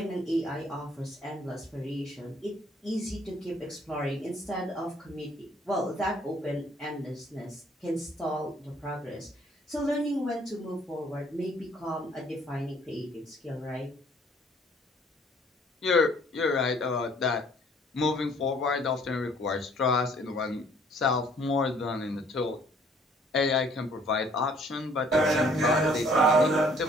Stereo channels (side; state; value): both; normal; correlation 0.60